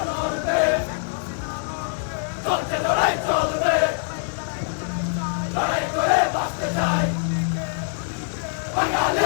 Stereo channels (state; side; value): silent; right; 63 dB below the other